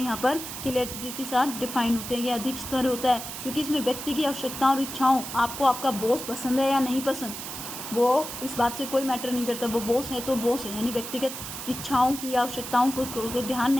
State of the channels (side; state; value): right; noise; hiss, 8 dB below the sound